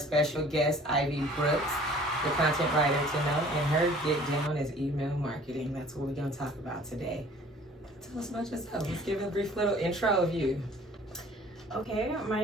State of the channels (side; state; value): both; normal; correlation 0.51